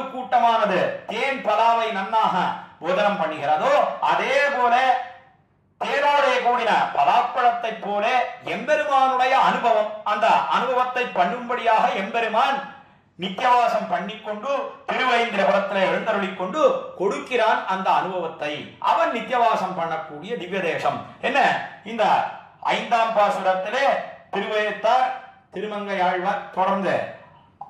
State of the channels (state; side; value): identical; both; correlation 1.00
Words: கூட்டமானது தேன் பலாவை நன்னாக போதனம் பண்ணுகிறதோ அதே போல தேனோட கூடின பலாப்பழத்தை போல எம்பெருமானுடைய அனுபவம், அந்த அனுபவத்தை பண்ணும்படியாக எம்பெருமான் நித்தியவாசம் பண்ணிக்கொண்டு திருவேந்திரபுரத்தில் எழுந்தருளிக் கொண்டு கொடுக்கிறான் அந்த அனுபவத்தை. அவன் நித்தியவாசம் பண்ணக்கூடிய திவ்ய தேசம் என்ன. இந்த 5ஆம் பாசுரத்திலே திருவேத்தார் திருமங்கையாழ்வார் தொடர்ந்து